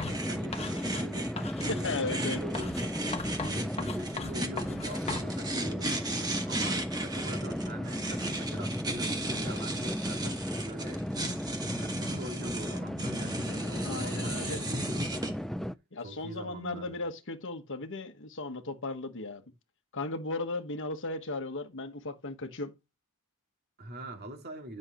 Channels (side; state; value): both; normal; correlation 0.44